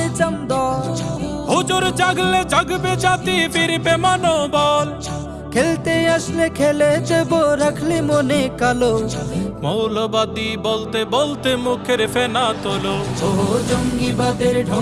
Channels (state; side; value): identical; both; correlation 1.00